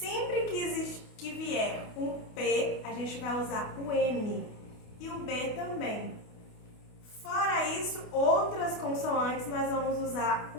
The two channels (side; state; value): right; late; 28 ms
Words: que vier um P, a gente vai usar o N. E o B também. Fora isso, outras consoantes nós vamos usar